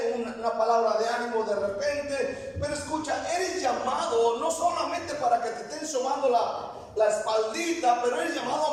una palabra de ánimo de repente. Pero escucha, eres llamado no solamente para que te estén sobando la espaldita, pero eres llamado a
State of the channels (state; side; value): identical; both; correlation 1.00